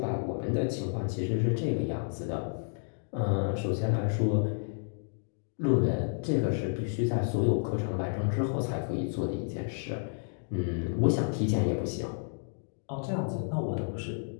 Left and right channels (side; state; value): right; silent; digital silence